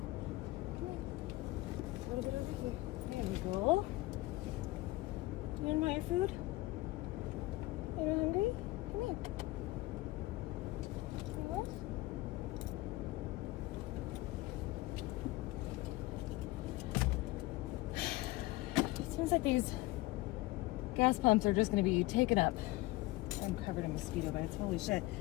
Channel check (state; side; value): quieter; right; 19.6 dB